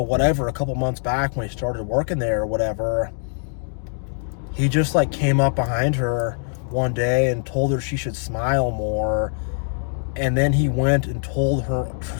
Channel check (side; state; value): right; silent; 64 dB below the other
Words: a couple months back when he started working there or whatever, he just, like, came up behind her one day and told her she should smile more. And then he went and told